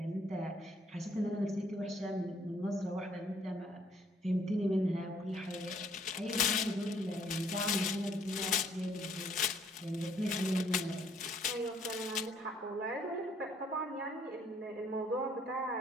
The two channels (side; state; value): both; normal; correlation 0.64